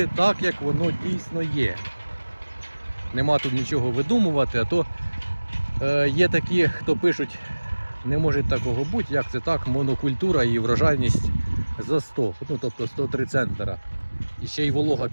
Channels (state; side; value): inverted; both; correlation -1.00